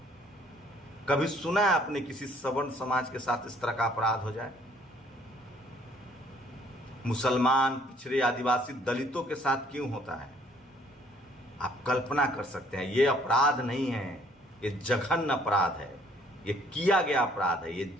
कभी सुना है आपने किसी सवर्ण समाज के साथ इस तरह का अपराध हो जाए? मुसलमान, पिछड़े, आदिवासी, दलितों के साथ क्यों होता है? आप कल्पना कर सकते हैं। ये अपराध नहीं है, ये जघन्य अपराध है, ये किया गया अपराध है, ये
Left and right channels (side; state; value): both; normal; correlation 0.61